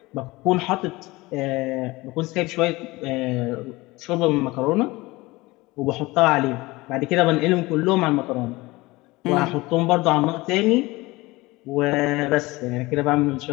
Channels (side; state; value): right; quieter; 21.3 dB